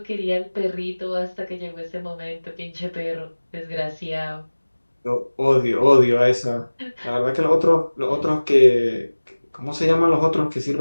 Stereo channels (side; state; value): both; inverted; correlation -1.00